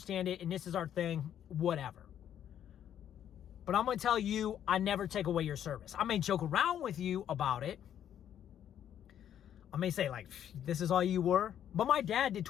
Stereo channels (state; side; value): quieter; right; 10.1 dB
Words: it, and this is our thing, whatever. But I'm going to tell you, I never take away your service. I may joke around with you about it. I may say, like, this is all you were. But my dad did